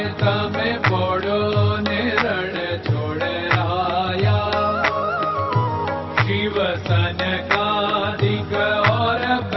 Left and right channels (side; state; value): both; identical; correlation 1.00